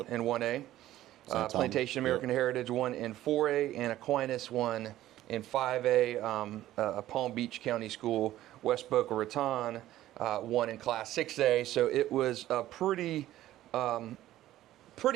1A. Plantation American Heritage won in 4A, and Aquinas won in 5A. Palm Beach County School, West Boca Raton, won in Class 6A. So it was a pretty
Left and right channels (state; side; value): quieter; left; 14.2 dB